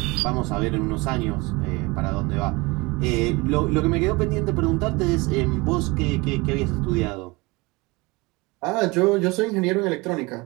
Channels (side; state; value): left; quieter; 24.6 dB